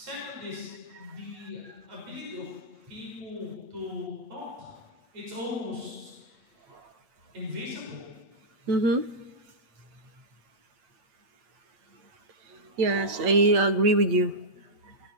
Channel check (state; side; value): late; left; 8.4 ms